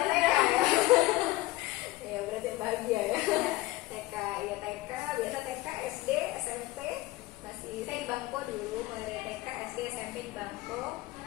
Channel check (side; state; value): right; quieter; 18.9 dB